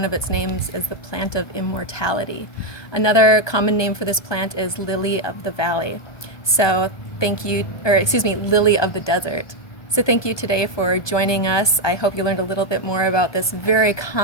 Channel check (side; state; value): right; late; 1.2 ms